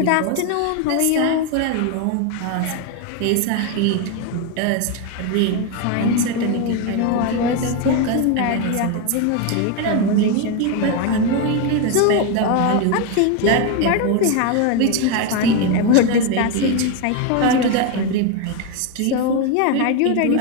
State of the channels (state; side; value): different; both; correlation 0.02